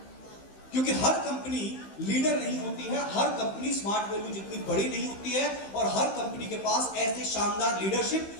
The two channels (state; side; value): late; right; 15 ms